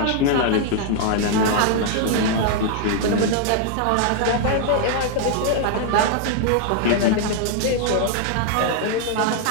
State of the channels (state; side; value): different; both; correlation 0.00